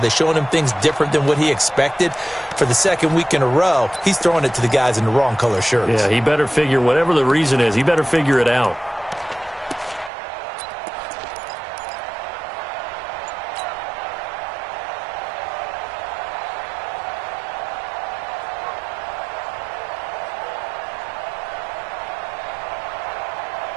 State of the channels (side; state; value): left; drops out; at 10.1 s